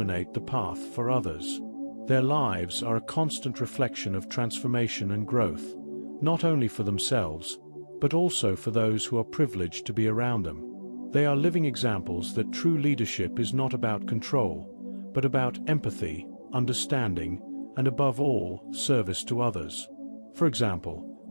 the path for others. Their lives are a constant reflection of transformation and growth, not only for themselves, but also for those who are privileged to be around them. They are living examples that true leadership is not about control, but about empathy, understanding, and above all, service to others. For example,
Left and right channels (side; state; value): both; inverted; correlation -1.00